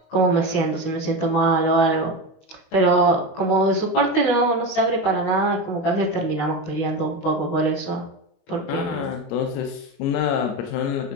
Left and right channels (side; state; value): right; late; 21 ms